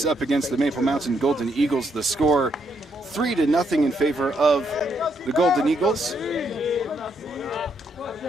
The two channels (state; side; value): normal; both; correlation 0.76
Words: up against the Maple Mountain Golden Eagles. The score 3-0 in favor of the Golden Eagles.